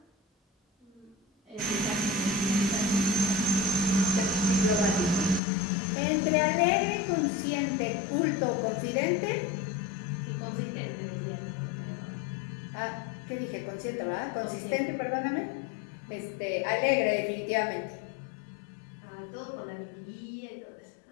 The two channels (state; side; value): drops out; right; at 5.4 s